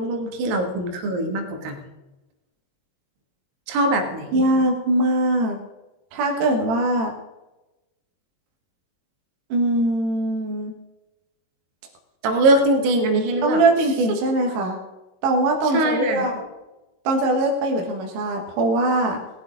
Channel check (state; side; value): late; left; 22 ms